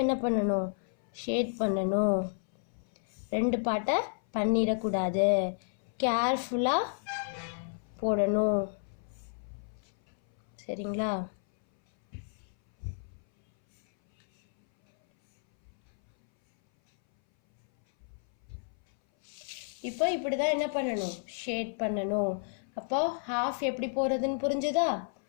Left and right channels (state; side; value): silent; right; 57 dB below the other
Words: என்ன பண்ணணும் ஷேட் பண்ணணும். 2 பாட்டை பண்ணிடக்கூடாது, கேர்ஃபுல்லாக போடணும். சரிங்களா? இப்போ இப்படி தான் என்ன பண்ணணும், ஷேட் பண்ணணும். அப்போ ஹாஃப் எப்படி போகிறதுன்னு புரிஞ்சுதா?